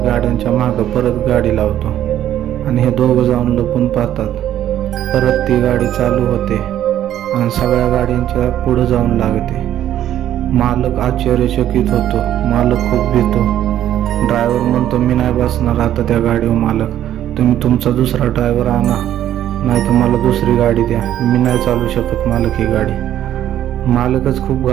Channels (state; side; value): quieter; left; 11.6 dB